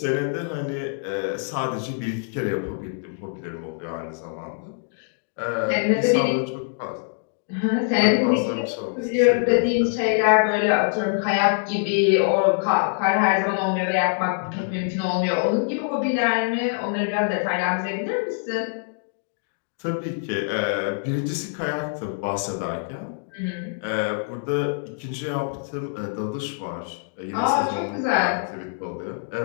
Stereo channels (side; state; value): right; silent; digital silence